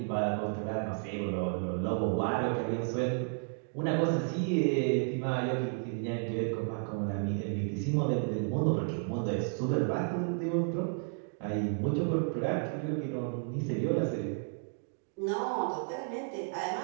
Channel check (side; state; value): left; silent; 56 dB below the other